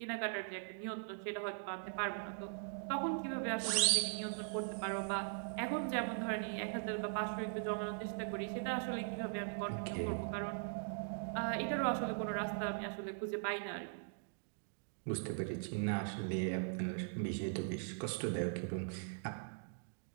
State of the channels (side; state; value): left; silent; digital silence